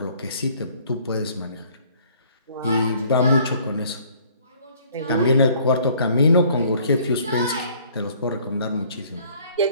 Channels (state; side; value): inverted; both; correlation -0.57